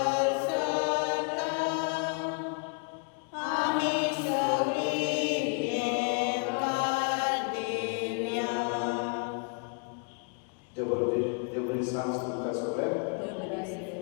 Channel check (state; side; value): quieter; right; 39.1 dB